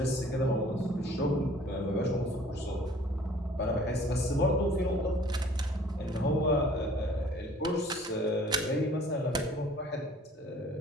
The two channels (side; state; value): both; normal; correlation 0.53